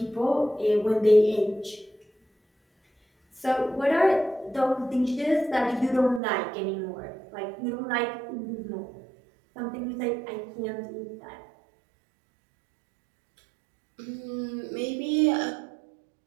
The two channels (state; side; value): drops out; left; at 6.2 s